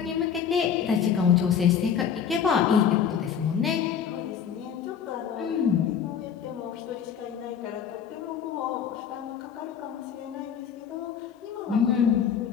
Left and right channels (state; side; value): quieter; right; 7.8 dB